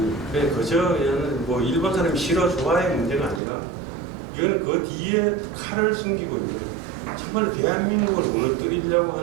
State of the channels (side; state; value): left; drops out; at 3.4 s